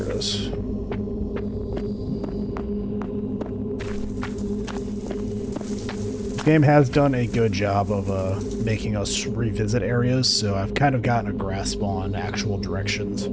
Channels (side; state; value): both; identical; correlation 1.00